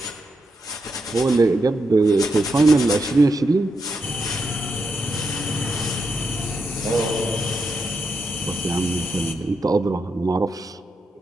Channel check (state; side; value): normal; both; correlation 0.84